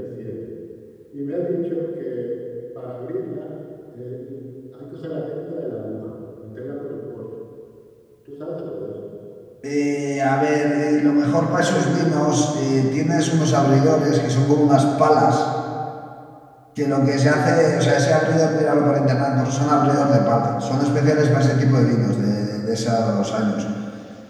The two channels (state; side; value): identical; both; correlation 1.00